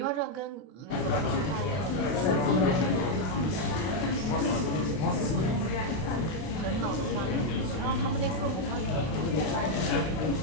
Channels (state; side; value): late; right; 32 ms